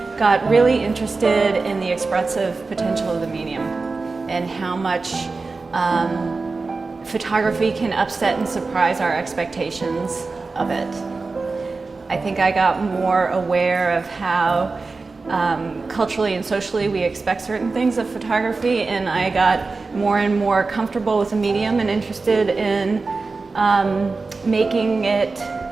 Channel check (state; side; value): quieter; left; 3.9 dB